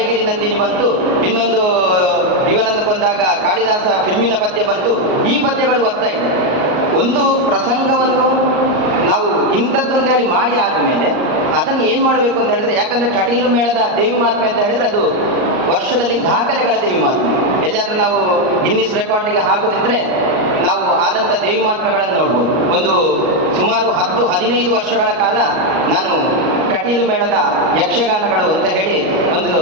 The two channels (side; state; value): left; late; 38 ms